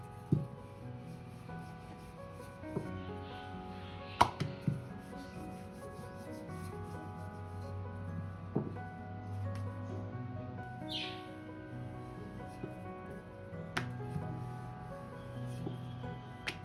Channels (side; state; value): both; identical; correlation 1.00